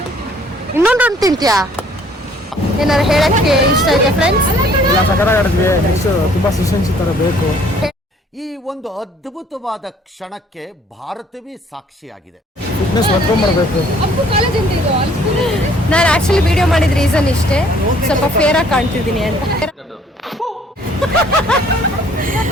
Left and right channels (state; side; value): normal; both; correlation 0.59